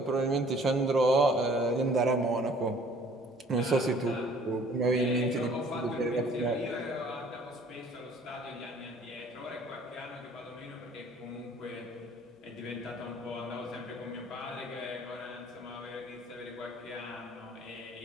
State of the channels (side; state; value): both; normal; correlation 0.55